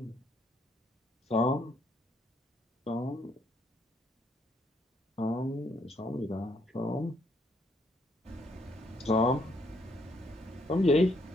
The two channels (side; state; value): both; normal; correlation 0.71